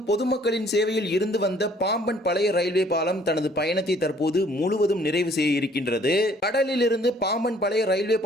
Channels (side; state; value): both; normal; correlation 0.59